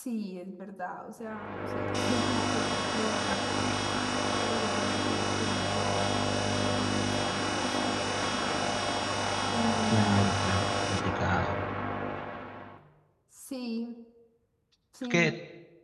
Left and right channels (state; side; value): identical; both; correlation 1.00